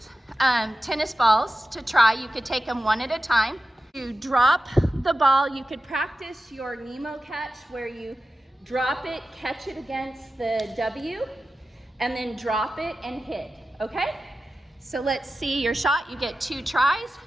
tennis balls to try. You could take them one at a time. You drop the ball. You could practice your Nemo catch where you drop it, catch it against the W, and then drop it and hit, okay? So let's see your shot. You get 2 tries.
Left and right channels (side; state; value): both; normal; correlation 0.93